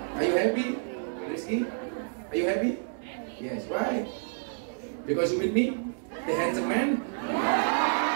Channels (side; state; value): left; silent; digital silence